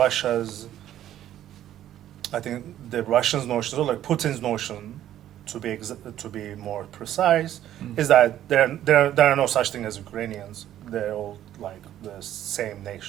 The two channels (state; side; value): quieter; left; 12.0 dB